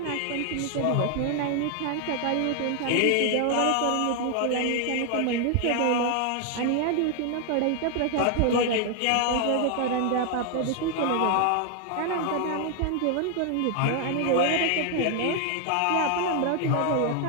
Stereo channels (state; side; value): different; both; correlation 0.00